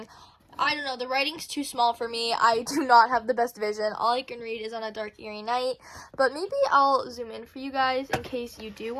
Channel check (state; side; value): identical; both; correlation 1.00